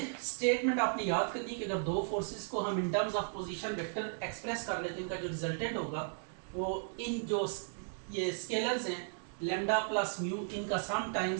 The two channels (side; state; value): left; silent; digital silence